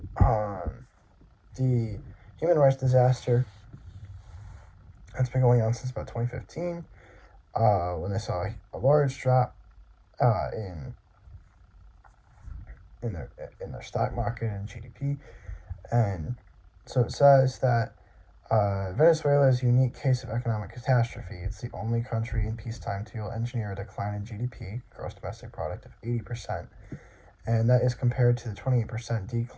the human rights disaster that's been going on since about 2015, when they saw a large drop in their stock market and GDP, and so it says that Venezuela is a unique case of economic catastrophe. It's the only country in peacetime to engineer a decline in GDP, gross domestic product, of 80%, and that is compared to the 28%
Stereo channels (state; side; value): identical; both; correlation 1.00